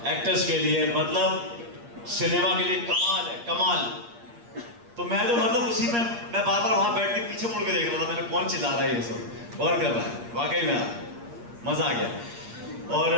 एक्टर्स के लिए, मतलब सिनेमा के लिए कमाल है, कमाल। तो मैं तो मतलब उसी में मैं बार बार वहाँ बैठ के पीछे मुड़ के देख रहा था, मैंने कौन चिल्ला रहा है ये सब, कौन कर रहा है। वाकई में मज़ा आ गया। और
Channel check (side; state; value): left; late; 8.5 ms